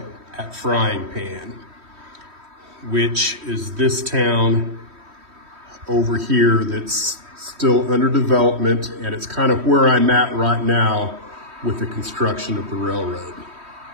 at Frying Pan, which is this town over here that's still under development, and it's kind of where I'm at right now with the construction of the railroad.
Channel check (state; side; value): late; left; 3.1 ms